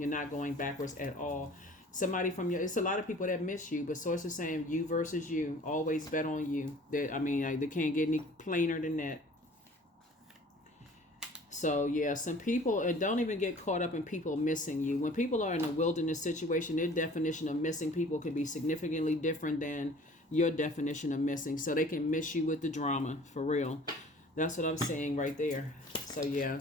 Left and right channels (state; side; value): normal; both; correlation 0.48